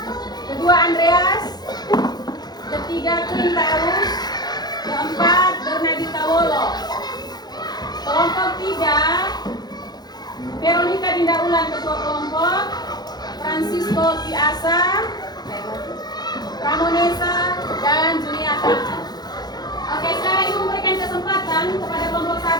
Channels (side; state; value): right; late; 0.20 ms